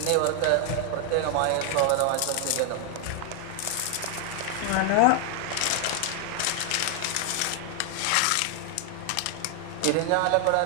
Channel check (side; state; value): both; different; correlation 0.00